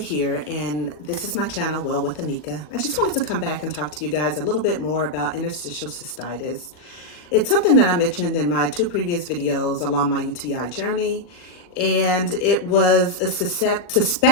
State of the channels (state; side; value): late; right; 40 ms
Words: and this is my channel, Well with Anika. I just wanted to come back and talk to you guys a little bit more about interstitial cystitis. It's something that I mentioned in my two previous videos along my UTI journey, and it was a